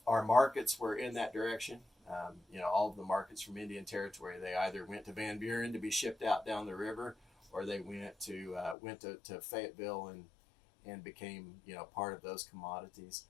our markets were in that direction. All of the markets from Indian Territory, they either went to Van Buren to be shipped out down the river, or they went to Fayetteville and became part of those commodities.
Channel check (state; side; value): drops out; right; at 8.8 s